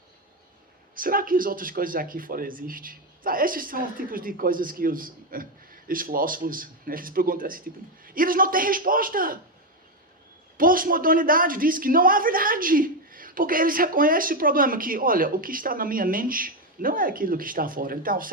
Será que as outras coisas aqui fora existem? Esses são os tipos de coisas que os filósofos, eles perguntam esse tipo. E eles não têm resposta. Pós-modernidade diz que não há verdade. Porque eles reconhecem o problema que, olha, o que está na minha mente não é aquilo que está fora. Então,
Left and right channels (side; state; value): both; normal; correlation 0.08